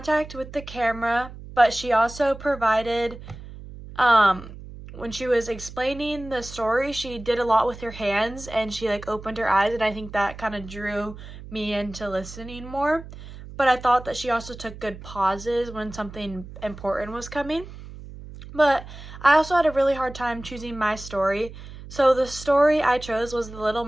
with the camera, but she also provided, when she was explaining the story, she did a lot with her hands, and she opened her eyes, and I think that kind of drew me into listening more. But I thought that she also took good pauses when something important was coming. But I also had a really hard time choosing my story. So the story I chose was The Little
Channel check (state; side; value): noise; right; hum, 14 dB below the sound